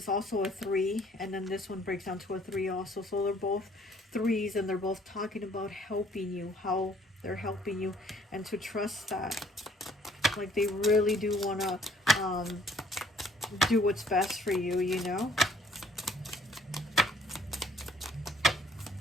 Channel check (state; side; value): normal; both; correlation 0.60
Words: also a 3. And then this one breaks down to a 3 also. So they're both 3s, and they're both talking about helping you, how they're helping you, and to trust that. Like they really do want to do what's best for you, you know.